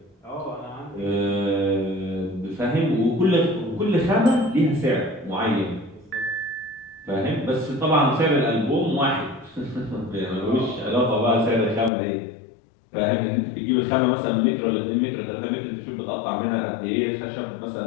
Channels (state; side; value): drops out; right; at 11.9 s